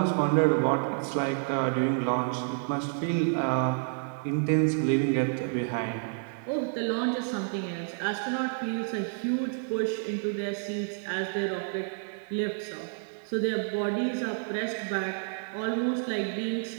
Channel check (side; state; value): left; silent; 56 dB below the other